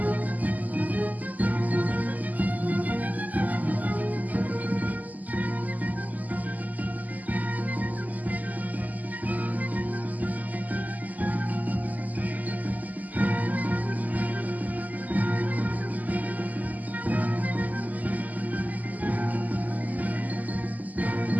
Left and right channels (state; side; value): late; left; 0.079 ms